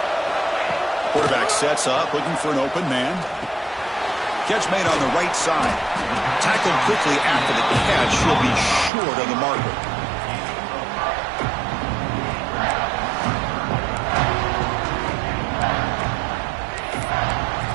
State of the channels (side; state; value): left; drops out; at 8.9 s